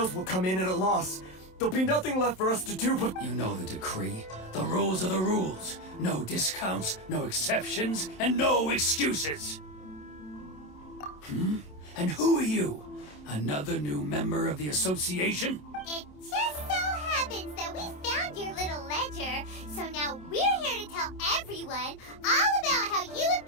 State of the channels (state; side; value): late; right; 27 ms